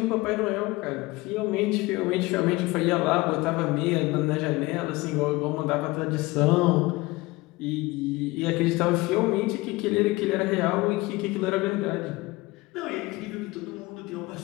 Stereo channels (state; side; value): quieter; right; 21.6 dB